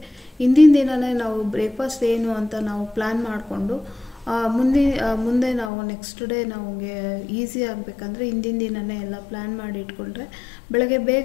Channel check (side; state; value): right; drops out; at 5.7 s